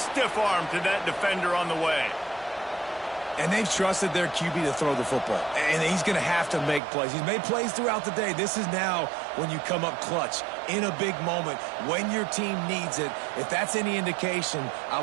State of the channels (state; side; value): drops out; left; at 6.8 s